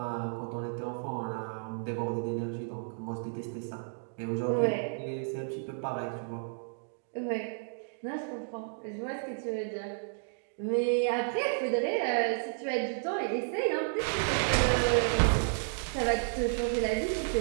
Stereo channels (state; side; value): silent; left; digital silence